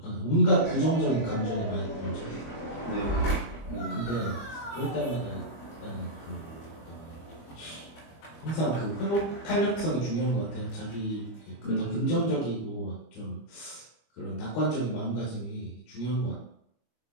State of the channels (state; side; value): late; right; 25 ms